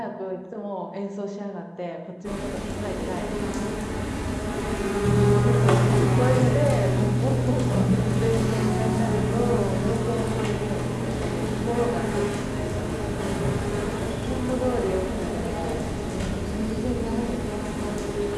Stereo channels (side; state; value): both; identical; correlation 1.00